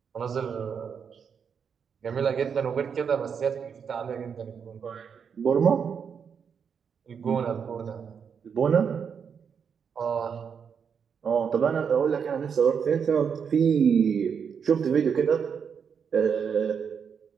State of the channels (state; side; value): quieter; left; 6.9 dB